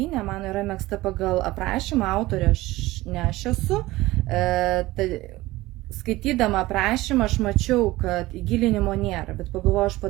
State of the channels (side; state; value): left; quieter; 18.5 dB